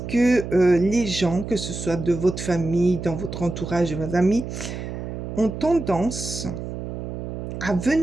que les gens, que ce soit de votre famille, dans votre entourage, de vos amis, ont tendance à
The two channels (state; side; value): noise; right; hum, 7 dB below the sound